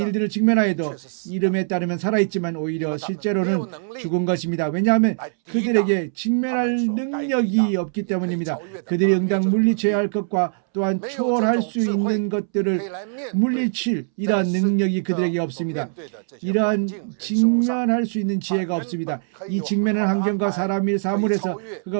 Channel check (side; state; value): left; silent; 64 dB below the other